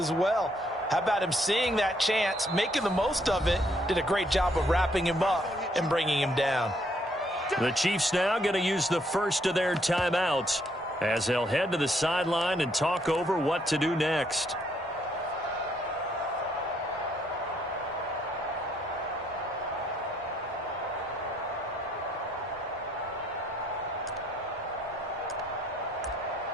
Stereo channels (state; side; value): normal; both; correlation 0.70